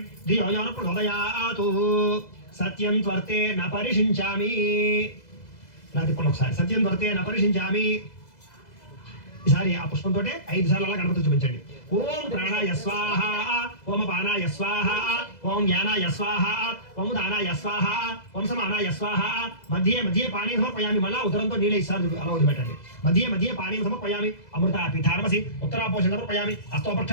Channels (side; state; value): right; late; 2.0 ms